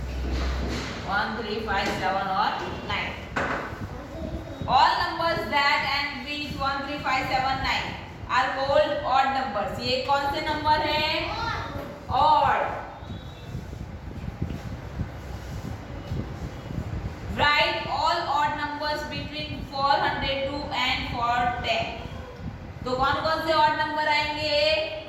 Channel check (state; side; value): identical; both; correlation 1.00